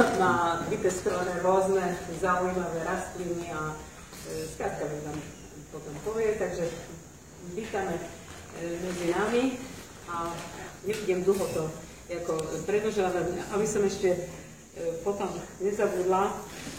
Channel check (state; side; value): identical; both; correlation 1.00